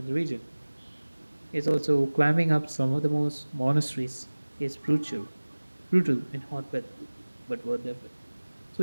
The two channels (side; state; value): both; inverted; correlation -1.00